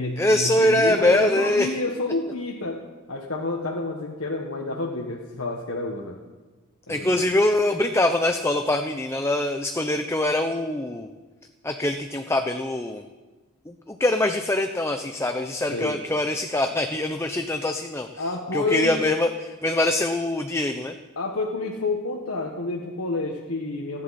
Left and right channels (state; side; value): normal; both; correlation 0.52